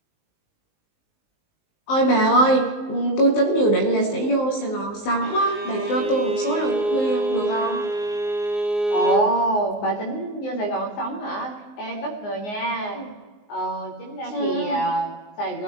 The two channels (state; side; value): late; right; 19 ms